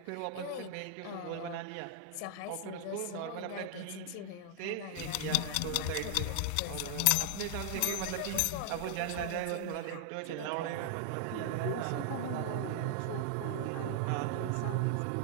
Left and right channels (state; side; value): different; both; correlation 0.00